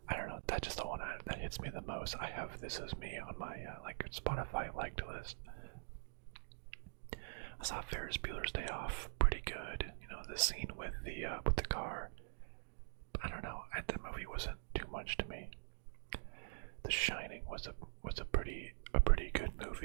I don't know, that's just the one that hits me the most. I have This Is Me on my, like, Spotify liked list. I saw Ferris Bueller's Day Off, pretty good. The scene with the car. I don't know, that movie wasn't too much to me. The Shining was a pretty good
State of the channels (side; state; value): left; silent; digital silence